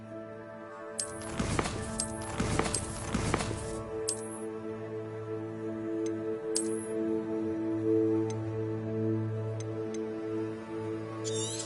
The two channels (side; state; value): both; identical; correlation 1.00